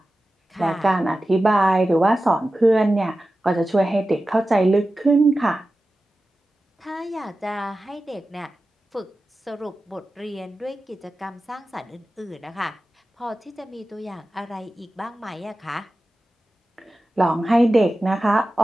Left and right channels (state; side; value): normal; both; correlation 0.94